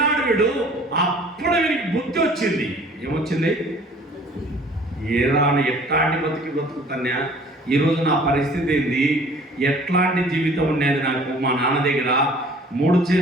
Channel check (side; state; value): both; normal; correlation 0.51